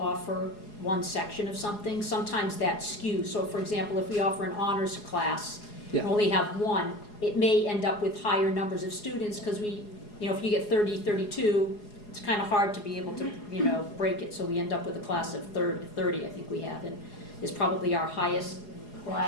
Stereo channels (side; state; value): right; late; 4.8 ms